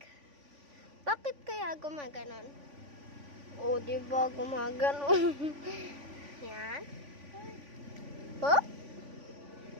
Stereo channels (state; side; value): late; left; 3.5 ms